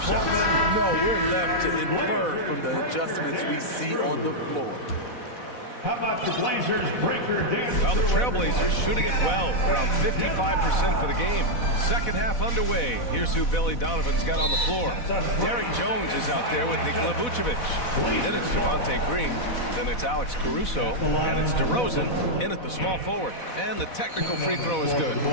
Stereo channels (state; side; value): late; right; 4.1 ms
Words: No, we're left to infer from the adjustments we see on the floor. How about the Blazers breaker dance? Well, the Trailblazers shooting it well, around 55% for the game. Second half underway. Here's who Billy Donovan's got on the floor. Derek Jones is out there with Nikola Vucevic. Then it's Javonte Green. Then it's Alex Caruso. And it's DeRozan in at the small forward. And the technical free throw is good.